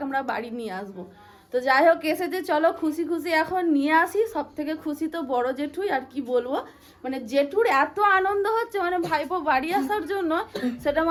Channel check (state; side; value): identical; both; correlation 1.00